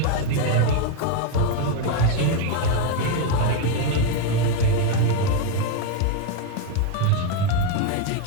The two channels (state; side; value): different; both; correlation 0.02